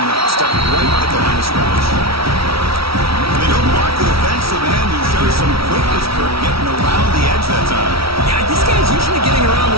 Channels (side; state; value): left; late; 0.75 ms